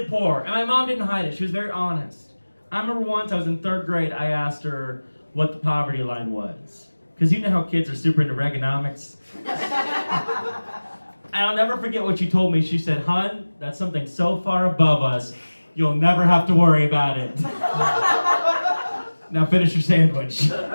poor, and my mom didn't hide it. She was very honest. I remember once I was in 3rd grade, I asked her what the poverty line was. Because you know how kids are super into Reaganomics. And I'll never forget what she told me. She said, "Hun, that's something so far above us, you'll never have to worry about it." Now finish your sandwich.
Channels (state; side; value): inverted; both; correlation -1.00